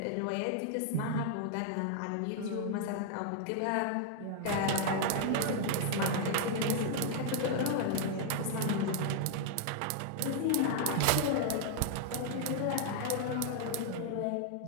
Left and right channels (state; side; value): different; both; correlation 0.00